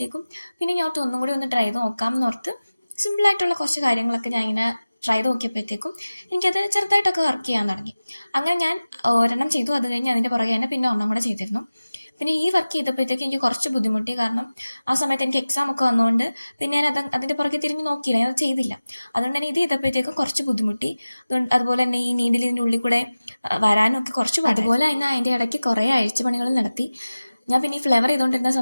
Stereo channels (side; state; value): both; inverted; correlation -0.97